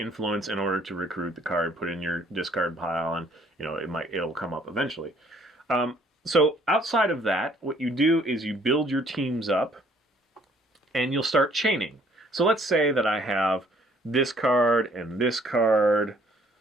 in order to recruit the card, put in your discard pile, and it'll come up eventually. So outside of that, what you do is you build your teams up, and you'll start chaining. So let's say that I have this card and this card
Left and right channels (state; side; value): normal; both; correlation 0.61